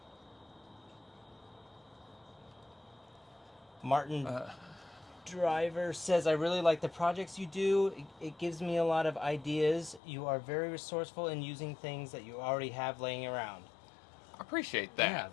Martin... Driver says, I really like the projects you do. It gives me a lot of ideas. You are very resourceful in using things that you already have laying around. I appreciate that. Yeah,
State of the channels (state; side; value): drops out; right; at 10.0 s